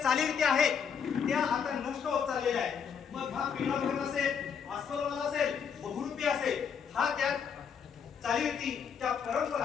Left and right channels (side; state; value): right; quieter; 7.0 dB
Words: चालीरीती आहेत त्या आता नष्ट होत चाललेल्या आहेत. मग हा पिंगळा भगत असेल, अस्वलवाला असेल, बहुरूपी असेल, हा त्या चालीरीती त्या